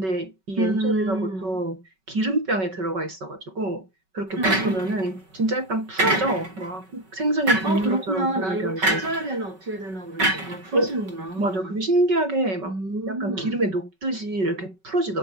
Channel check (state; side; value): late; left; 5.3 ms